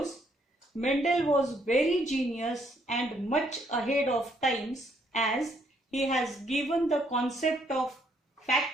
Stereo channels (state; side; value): normal; both; correlation 0.70